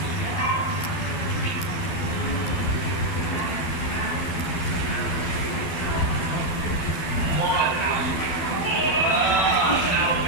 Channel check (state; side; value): late; right; 12 ms